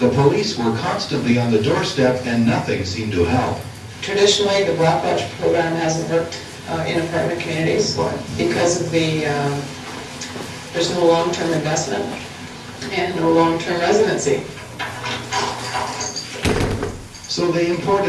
police were constantly on the doorstep and nothing seemed to help. Traditionally, the Black Watch program hasn't worked in apartment communities because of there's no long-term investment and no long-term residency. So they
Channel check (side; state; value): both; identical; correlation 1.00